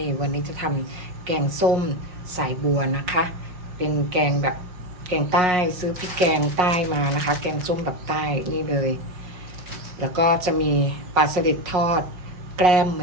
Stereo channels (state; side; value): late; left; 5.6 ms